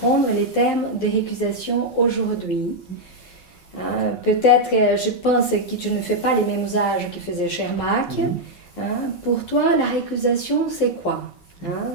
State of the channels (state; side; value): late; right; 5.5 ms